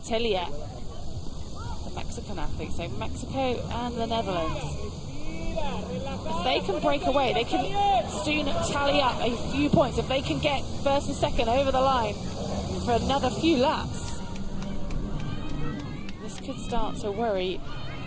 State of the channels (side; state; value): both; identical; correlation 1.00